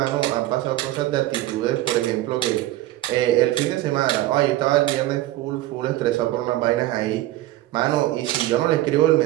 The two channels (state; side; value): quieter; left; 16.0 dB